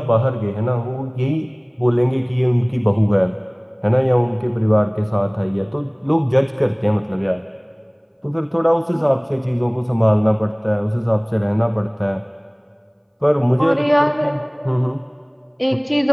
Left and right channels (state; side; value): identical; both; correlation 1.00